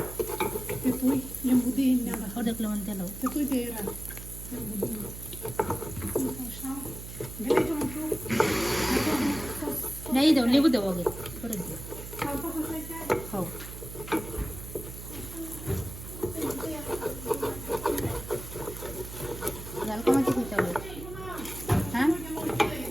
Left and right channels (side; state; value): right; noise; hum, 11 dB below the sound